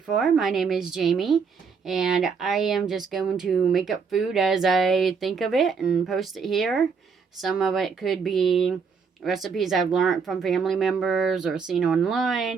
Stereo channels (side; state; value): left; quieter; 5.6 dB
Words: my name is Jamie, and I am just going to make up food as I think of it and post it here. Some of it could be recipes I've learned from family members or seen